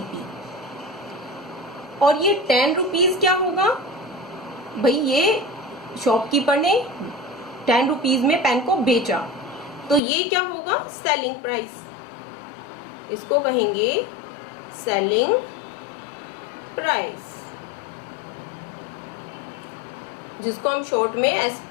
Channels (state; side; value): drops out; right; at 10.0 s